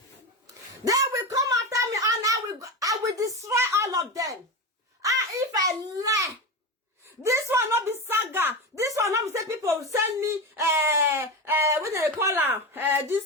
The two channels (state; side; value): normal; both; correlation 0.20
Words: They will come after me and I will destroy all of them. If I lie, this one not be saga. This one not be say people send me what they call her this